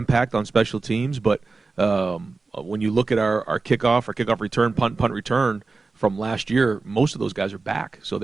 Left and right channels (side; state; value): left; quieter; 4.0 dB